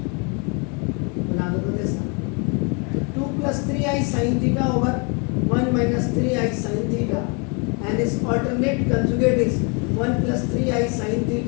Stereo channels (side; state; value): right; quieter; 34.2 dB